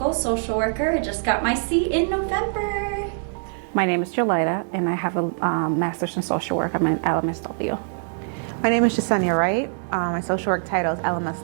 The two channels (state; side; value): silent; left; digital silence